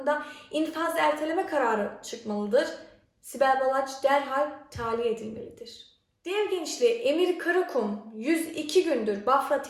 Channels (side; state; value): both; identical; correlation 1.00